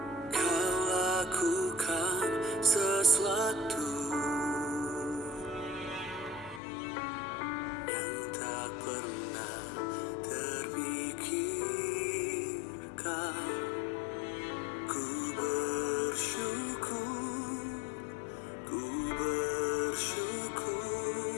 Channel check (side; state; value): right; drops out; at 6.6 s